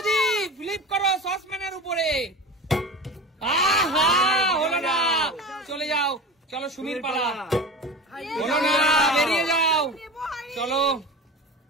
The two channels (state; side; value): normal; both; correlation 0.32